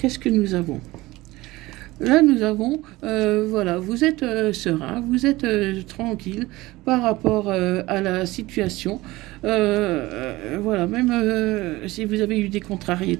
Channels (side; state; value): left; quieter; 19.5 dB